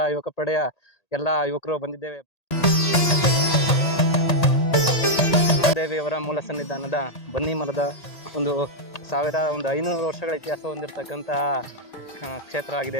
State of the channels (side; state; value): right; late; 1.8 ms